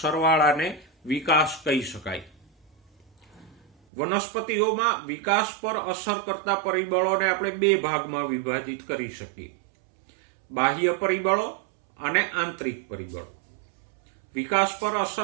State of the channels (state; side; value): drops out; left; at 3.7 s